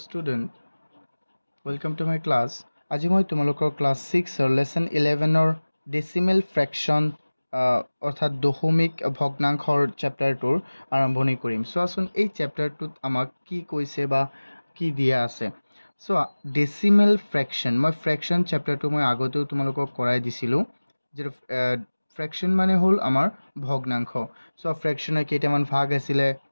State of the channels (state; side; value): inverted; both; correlation -1.00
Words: welcome to my class. আজি মই তোমালোকৰ ক্লাছ 6 লেসন 11 ডেসিমেল ফ্ৰেকশন অৰ্থাৎ দশমিক ভগ্নাংশৰ চেপ্টাৰটোৰ আৰম্ভণি কৰিম। চোৱাচোন এই চেপ্টাৰটোত আমাক কি কৈছে বা কি দিয়া আছে। চোৱা ডেসিমেল ফ্ৰেকশন, মই ফ্ৰেকশন চেপ্টাৰটো মই আগতেও তোমালোকক কৰাই দিছিলোঁ। যে ফ্ৰেকশন মানে হ'ল আমাৰ ভগ্নাংশ। চোৱা ফ্ৰেকশনৰ কেইটামান ভাগ আছিলে,